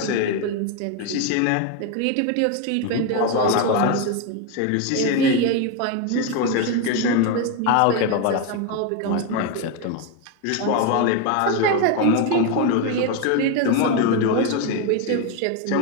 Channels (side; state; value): both; different; correlation 0.02